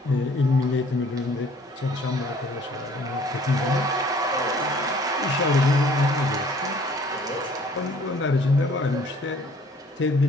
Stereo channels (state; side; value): normal; both; correlation 0.55